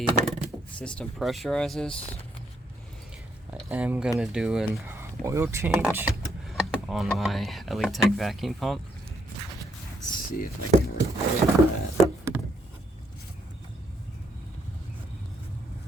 system pressurizes, I am going to do an oil change on my LE Tech vacuum pump. Let's see if I can record that.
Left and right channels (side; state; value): both; normal; correlation 0.74